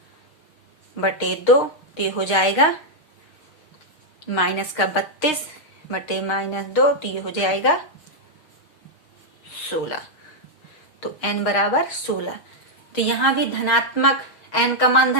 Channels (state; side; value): late; right; 6.5 ms